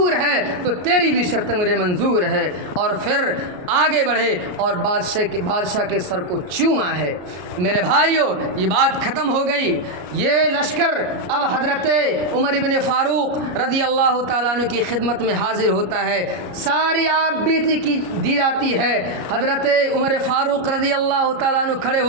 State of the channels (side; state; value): left; late; 33 ms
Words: ہے تو تیری بھی شرط مجھے منظور ہے، اور پھر آگے بڑھے اور بادشاہ کے سر کو چوما ہے۔ میرے بھائیوں، یہ بات ختم ہو گئی۔ یہ لشکر اب حضرت عمر بن فاروق رضی اللہ تعالیٰ عنہ کی خدمت میں حاضر ہوتا ہے، ساری آپ بیتی کی دی جاتی ہے۔ حضرت عمر فاروق رضی اللہ تعالیٰ عنہ کھڑے